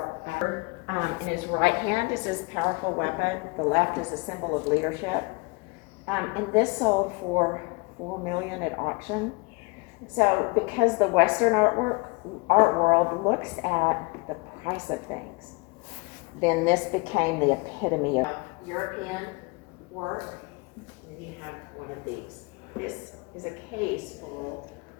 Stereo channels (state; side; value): quieter; right; 28.6 dB